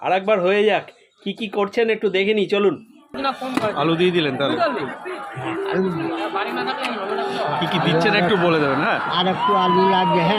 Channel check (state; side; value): identical; both; correlation 1.00